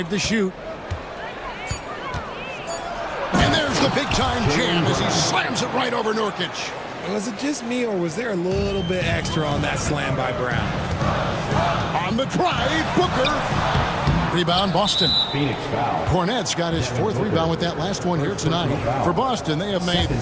to shoot. And there's the big-time jam as he slams it right over Nurkic. Was it just me, or was there a little bit extra on that slam by Brown? On the drive, Booker. Rebound, Boston. Phoenix foul. Cornette's got his 4th rebound with that last one here tonight. For Boston, they have made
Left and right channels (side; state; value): both; identical; correlation 1.00